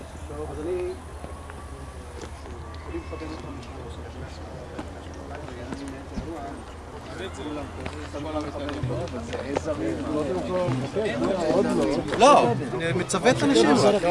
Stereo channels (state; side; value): identical; both; correlation 1.00